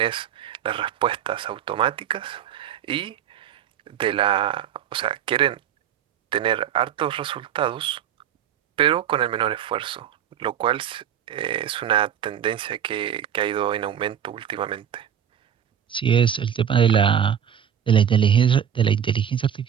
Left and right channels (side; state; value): left; quieter; 9.1 dB